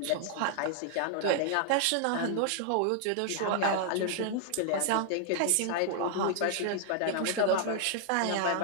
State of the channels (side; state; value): both; different; correlation -0.01